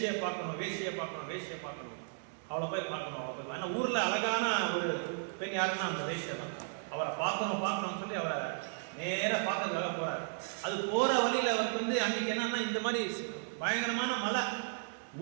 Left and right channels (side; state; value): left; silent; digital silence